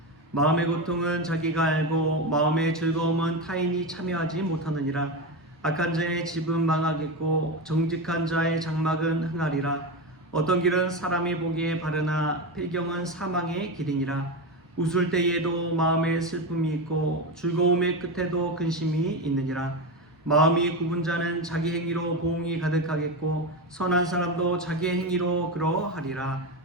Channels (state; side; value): normal; both; correlation 0.17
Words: 마음의 고통은 자기가 알고 마음의 즐거움은 타인이 참여하지 못하느니라. 악한 자의 집은 망하겠고 정직한 자의 장막은 흥하리라. 어떤 길은 사람이 보기에 바르나 필경은 사망의 길이니라. 웃을 때에도 마음에 슬픔이 있고 즐거움의 끝에도 근심이 있느니라. 마음이 굽은 자는 자기 행위로 보응이 가득하겠고 선한 사람도 자기의 행위로 그러하리라.